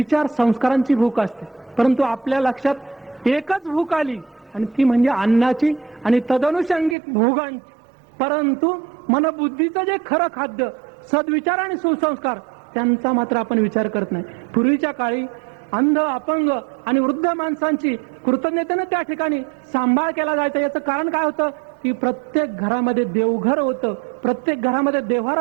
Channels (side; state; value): left; drops out; at 7.0 s